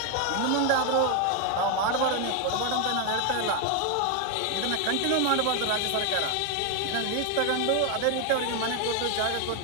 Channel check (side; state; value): both; different; correlation 0.01